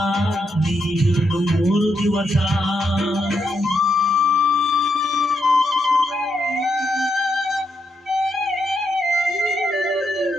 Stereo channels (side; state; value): both; normal; correlation 0.81